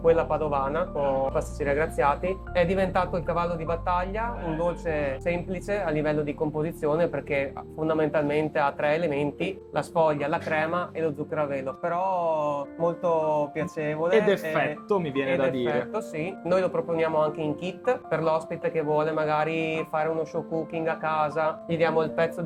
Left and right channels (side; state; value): both; identical; correlation 1.00